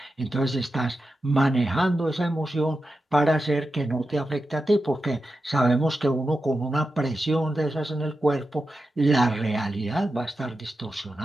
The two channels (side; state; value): both; normal; correlation 0.90